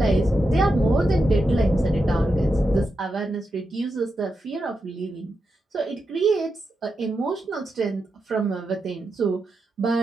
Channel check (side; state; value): both; normal; correlation 0.87